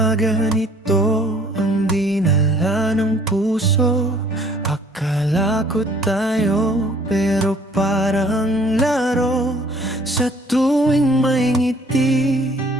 ganito ang dinala ng puso? Akala ko tayo pero parang laro. Sa tuwing may ngiti,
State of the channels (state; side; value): normal; both; correlation 0.57